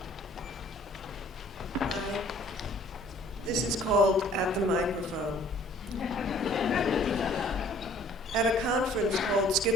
This is called At the Microphone. At a conference called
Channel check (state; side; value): normal; both; correlation 0.55